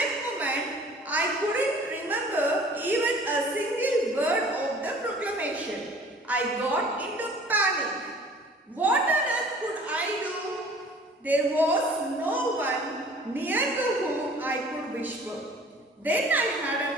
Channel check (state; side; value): normal; both; correlation 0.50